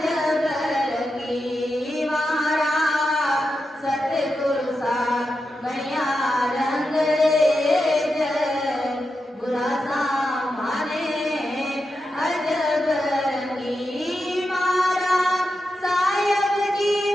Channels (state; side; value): normal; both; correlation 0.88